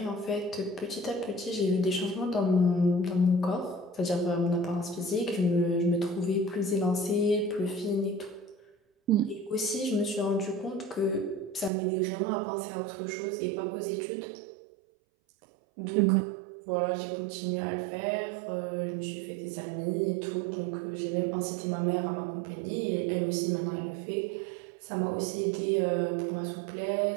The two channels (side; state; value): left; drops out; at 11.7 s